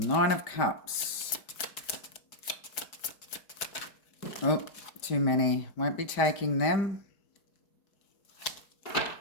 of Cups. Oh, too many. Won't be taking them.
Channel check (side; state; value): right; late; 5.1 ms